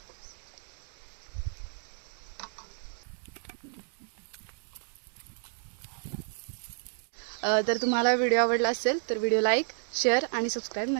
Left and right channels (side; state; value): left; silent; digital silence